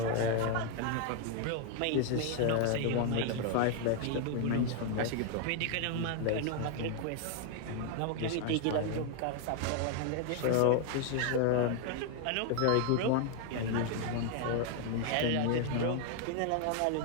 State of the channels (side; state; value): both; different; correlation 0.00